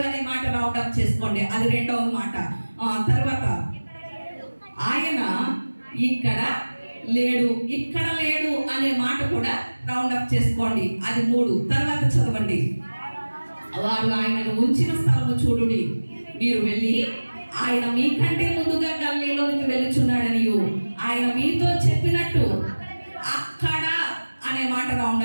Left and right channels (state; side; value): inverted; both; correlation -1.00